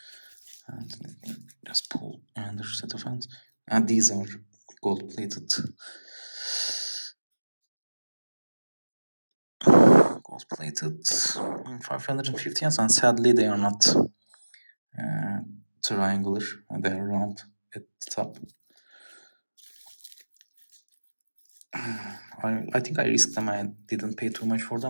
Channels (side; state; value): both; inverted; correlation -1.00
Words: And let me just pull another set of hands. And these are gold plated. Gold plated 550 hands, and sadly they are not triangular, and they are round at the top. I think I risked them. I didn't pay too much for